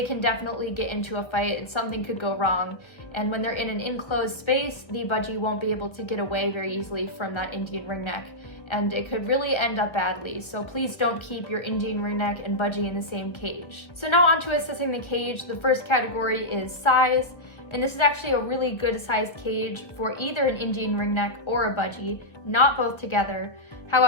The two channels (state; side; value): late; right; 1.3 ms